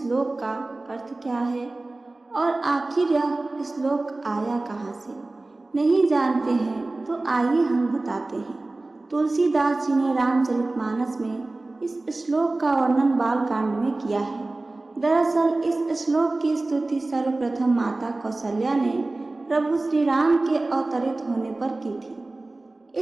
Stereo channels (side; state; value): left; quieter; 3.0 dB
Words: का अर्थ क्या है और आखिर यह श्लोक आया कहाँ से? नहीं जानते हैं तो आइए हम बताते हैं। तुलसीदास जी ने रामचरितमानस में इस श्लोक का वर्णन बालकांड में किया है। दरअसल इस श्लोक की स्तुति सर्वप्रथम माता कौशल्या ने प्रभु श्री राम के अवतरित होने पर की थी।